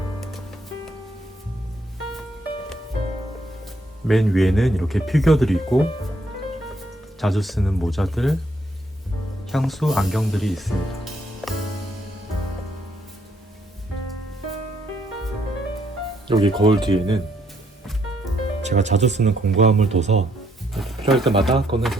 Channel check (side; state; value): both; normal; correlation 0.71